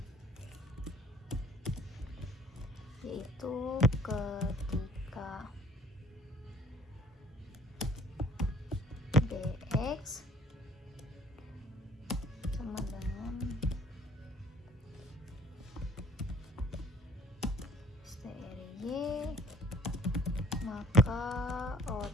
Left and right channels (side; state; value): both; normal; correlation 0.55